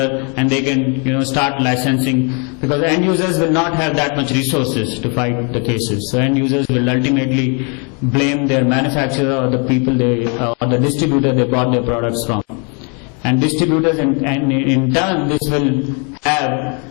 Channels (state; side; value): quieter; right; 35.9 dB